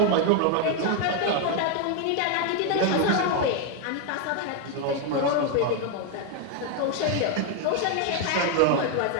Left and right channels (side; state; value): both; different; correlation 0.01